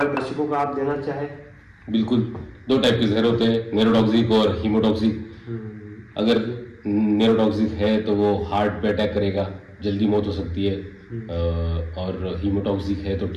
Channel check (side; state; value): both; identical; correlation 1.00